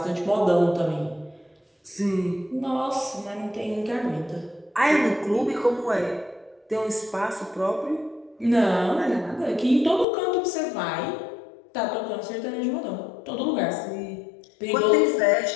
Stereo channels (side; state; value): right; drops out; at 10.1 s